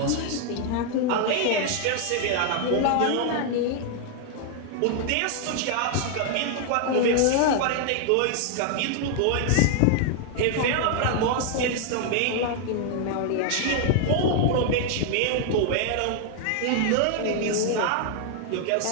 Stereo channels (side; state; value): both; different; correlation 0.00